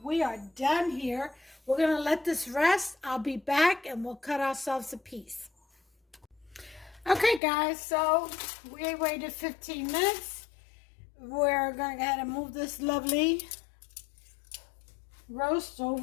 We are done here. We're going to let this rest. I'll be back and we'll cut ourselves a piece. Okay, guys, so we waited 15 minutes. We're going to go ahead and move this lovely roast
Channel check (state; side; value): drops out; right; at 7.4 s